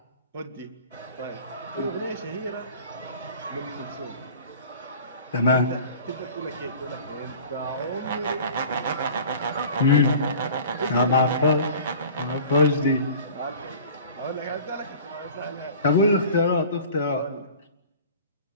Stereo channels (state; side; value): inverted; both; correlation -0.43